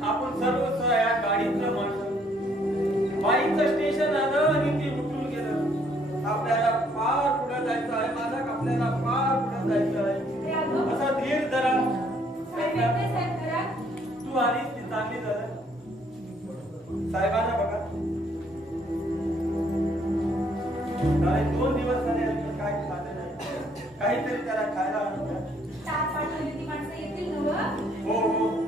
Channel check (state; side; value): normal; both; correlation 0.66